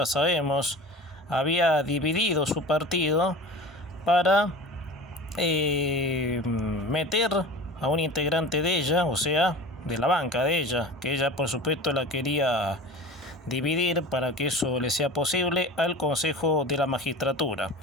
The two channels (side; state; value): both; normal; correlation 0.36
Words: sabemos, había dividido su partido para meter a un integrante de ella, o sea, de la banca de ella, que ella por supuesto la quería dividir para que eso le sea posible al Consejo de la Magistratura.